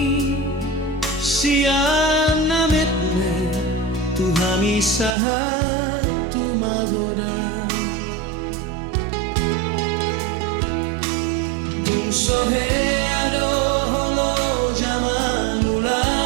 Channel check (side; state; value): left; drops out; at 5.2 s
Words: siya namit me tuhami sahat tumagoda. Tung sohe ado holo jaman ula